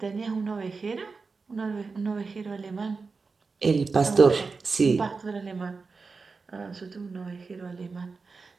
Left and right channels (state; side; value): quieter; left; 4.4 dB